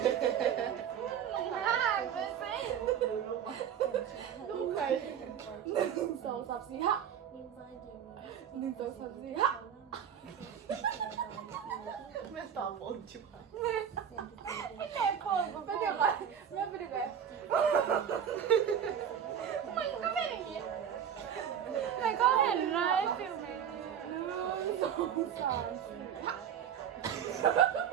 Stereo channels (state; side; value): quieter; left; 8.7 dB